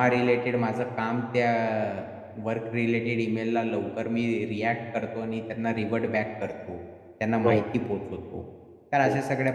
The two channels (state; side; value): identical; both; correlation 1.00